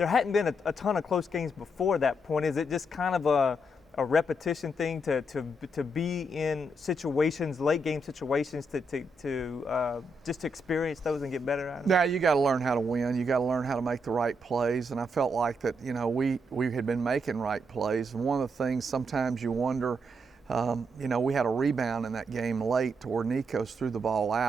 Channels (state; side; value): normal; both; correlation 0.79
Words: hadn't been a ton of close games before that point. Is it just kind of a repetition thing to be in situations, late game situations, just to experience those and get better at them? Yeah, you got to learn how to win. You got to learn how to make the right plays. And I felt like that, we had been making right plays. And one of the things sometimes you wonder, we had a rebound in that game late to where Nikos threw the ball